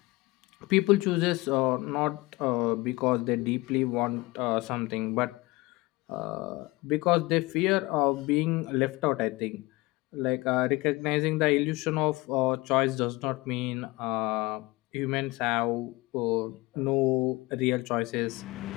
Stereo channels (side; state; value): right; quieter; 22.1 dB